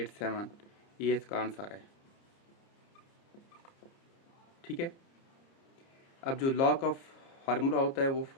ये इसका आंसर है। ठीक है, अब जो लॉग का फार्मूला होता है वो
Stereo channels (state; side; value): late; right; 29 ms